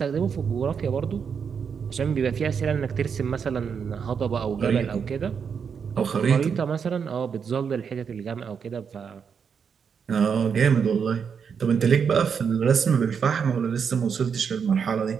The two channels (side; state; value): left; quieter; 6.6 dB